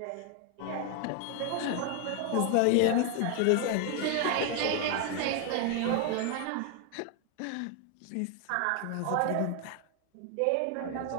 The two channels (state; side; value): different; both; correlation 0.00